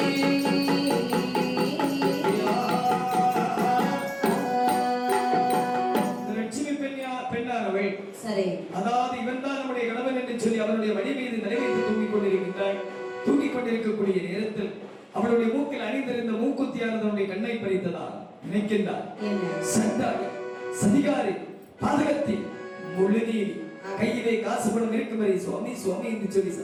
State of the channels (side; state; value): both; identical; correlation 1.00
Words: சரி, அதாவது இவன் தான் நம்முடைய கணவன் என்று சொல்லி அவனுடைய வழி மீது நிறைவேற்றி தூங்கிக் கொண்டிருக்கக்கூடிய நேரத்தில் அவளுடைய மூக்கில் அணிந்திருந்த மூக்குத்தியானது அவனுடைய கண்ணை பறித்ததா நினைக்கின்றார். சண்டாளி, சதிகாரி, பாதகத்தி, முழுநீதி, கையிலே காசு பணம் இருக்கும் வரை சுவாமி சுவாமி என்று சொல்லி